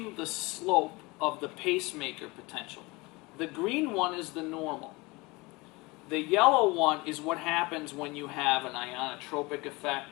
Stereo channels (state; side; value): quieter; right; 24.0 dB